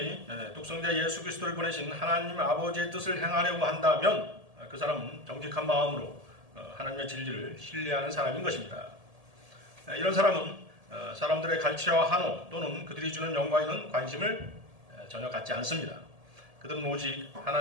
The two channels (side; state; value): left; late; 1.7 ms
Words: 독생자 예수 그리스도를 보내신 하나님 아버지의 뜻을 행하려고 한다면 그 사람은 정직한 마음으로 하나님의 진리를 신뢰하는 사람인 것입니다. 이런 사람은 사람들의 갈치와 한호 또는 그들이 주는 영광에는 관심을 전혀 갖지 않습니다. 그들은 오직